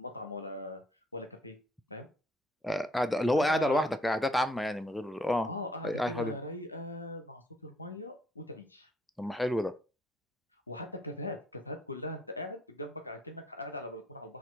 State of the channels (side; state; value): both; normal; correlation 0.68